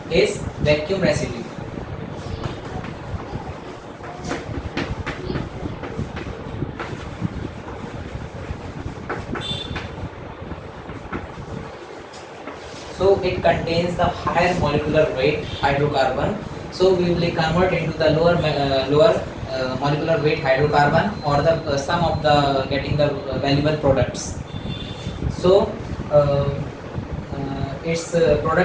is vacuum residue. So it contains the higher molecular weight hydrocarbon. So we will convert into the lower molecular weight hydrocarbon, or the sum of the getting the valuable products. So its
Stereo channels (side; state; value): both; identical; correlation 1.00